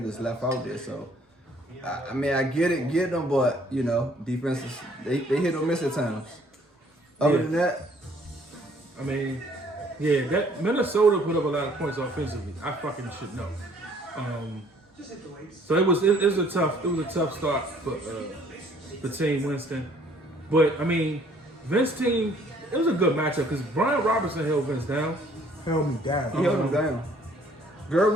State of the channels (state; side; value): normal; both; correlation 0.60